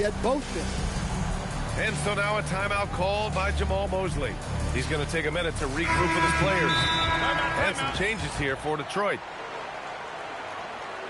at both ends. And so now a timeout called by Jamal Mosley. He's going to take a minute to regroup with his players. And some changes here for Detroit.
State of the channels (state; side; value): identical; both; correlation 1.00